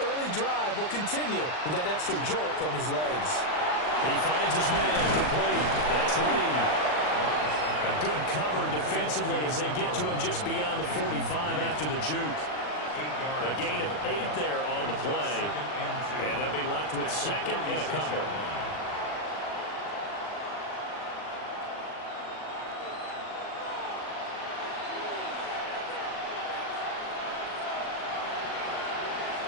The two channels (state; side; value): late; right; 39 ms